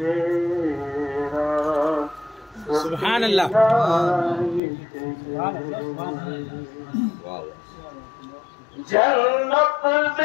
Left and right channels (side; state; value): right; drops out; at 4.6 s